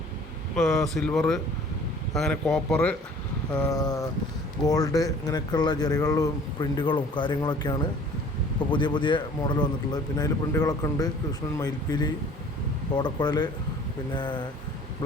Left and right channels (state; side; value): normal; both; correlation 0.51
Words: സിൽവർ, അങ്ങനെ കോപ്പർ, ഗോൾഡ്, ഇങ്ങനെയൊക്കെയുള്ള ജെറികളും പ്രിൻറ്റുകളും കാര്യങ്ങളൊക്കെയാണ് ഇപ്പോൾ പുതിയ മോഡൽ വന്നിട്ടുള്ളത്. പിന്നെ അതിൽ പ്രിൻറ്റുകളൊക്കെ ഉണ്ട്. കൃഷ്ണൻ, മയിൽപ്പീലി, ഓടക്കുഴൽ, പിന്നെ